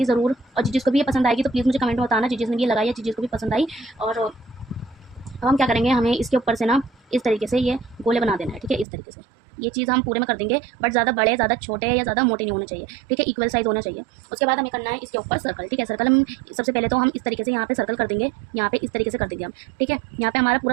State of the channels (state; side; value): drops out; left; at 8.8 s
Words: ज़रूर। और जिसको भी ये पसंद आएगी तो प्लीज़ मुझे कमेंट में बताना, जिसने ये लगाई है, जिसको भी पसंद आई। और अब हम क्या करेंगे, हमें इसके ऊपर से ना इस तरीके से ये गोले बना देना है, ठीक है। इस तरीके से ये चीज़ हम पूरे में कर देंगे, बट ज़्यादा बड़े, ज़्यादा छोटे या ज़्यादा मोटे नहीं होने चाहिए, ठीक है। इक्वल साइज़ होना चाहिए। उसके बाद हमें करना है इसके ऊपर सर्कल, ठीक है। सर्कल हम सबसे पहले तो हम इस तरीके से यहाँ पे सर्कल कर देंगे, यहाँ पे इस तरीके से कर देंगे हम, ठीक है। यहाँ पे हमारा